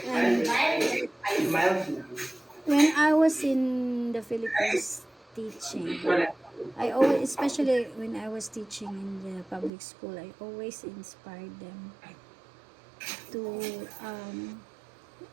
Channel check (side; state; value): left; drops out; at 9.7 s